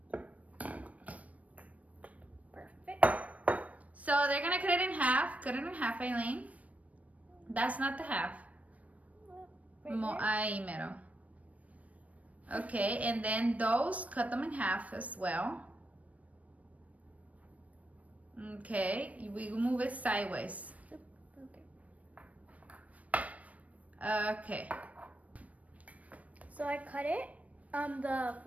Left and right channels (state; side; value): late; left; 0.068 ms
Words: Perfect. So they're gonna cut it in half. Cut it in half, Aileen. That's not the half. Right here? Mero. Okay, and then those, cut them in half as well. Okay, we move it sideways. Okay. Okay. So I cut it. The